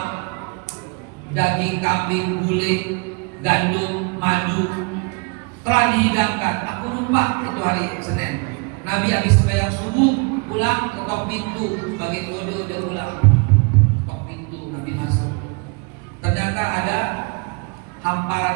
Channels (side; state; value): left; quieter; 32.8 dB